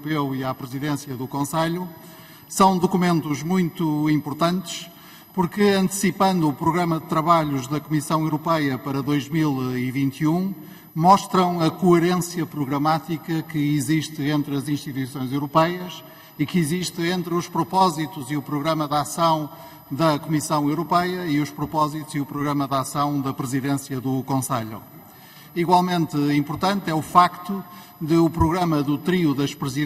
e à Presidência do Conselho, são documentos muito importantes porque, antecipando o programa de trabalhos da Comissão Europeia para 2021, mostram a coerência programática que existe entre as instituições europeias e que existe entre os propósitos e o programa de ação da Comissão Europeia e os propósitos e o programa de ação da Presidência do Conselho. Igualmente importante é o facto de o programa do trio das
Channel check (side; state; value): both; identical; correlation 1.00